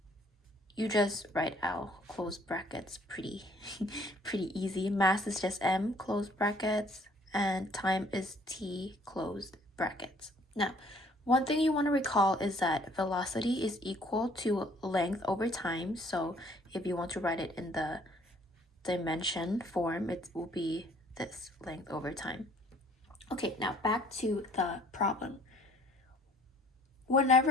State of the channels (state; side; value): normal; both; correlation 0.59